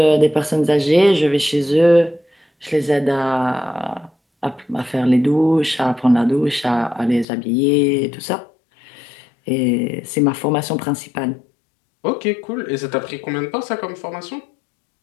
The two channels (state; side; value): drops out; right; at 7.2 s